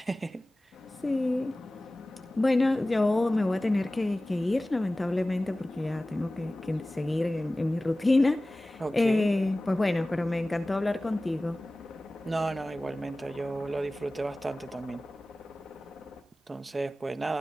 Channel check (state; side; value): normal; both; correlation 0.97